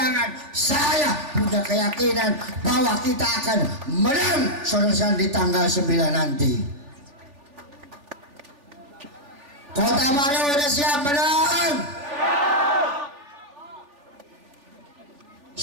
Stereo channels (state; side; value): late; left; 3.5 ms